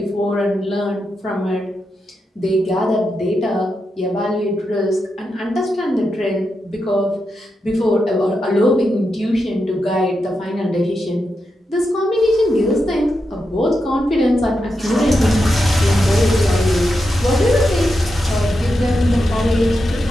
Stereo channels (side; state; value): both; normal; correlation 0.87